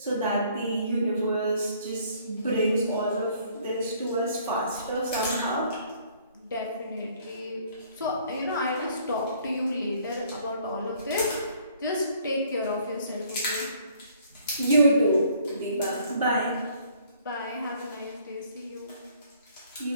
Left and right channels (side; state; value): both; inverted; correlation -0.61